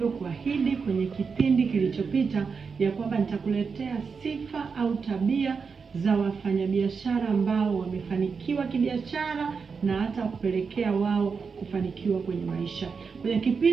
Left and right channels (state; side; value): quieter; left; 5.4 dB